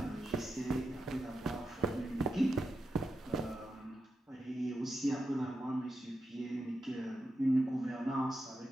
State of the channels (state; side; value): normal; both; correlation 0.88